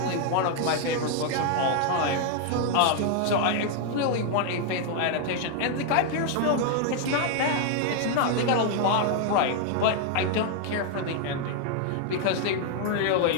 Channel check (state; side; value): different; both; correlation 0.00